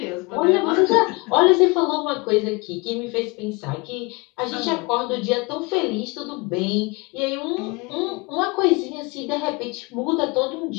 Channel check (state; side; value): quieter; right; 27.4 dB